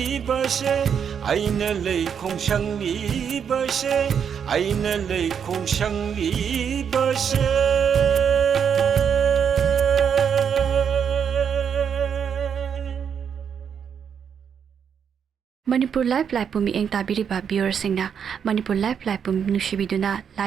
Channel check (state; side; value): quieter; left; 7.6 dB